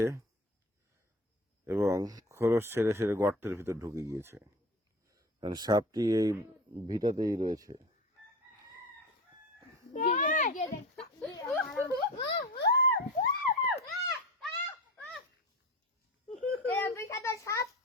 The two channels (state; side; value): normal; both; correlation 0.31